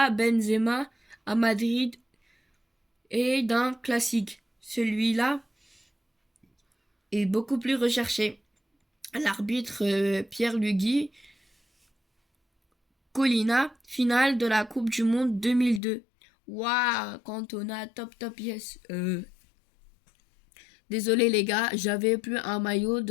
Benzema, à Madrid et d'un classique. Celui-là est beaucoup plus recherché. L'arbitre Pierre Lugui. Colina, finale de la Coupe du Monde 2002. Waouh, Cantona, top, yes. Désolé les gars, j'avais plus un maillot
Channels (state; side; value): drops out; right; at 15.8 s